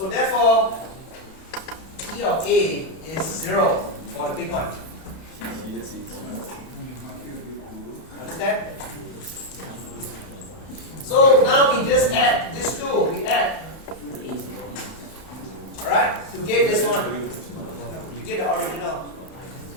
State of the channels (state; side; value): late; right; 31 ms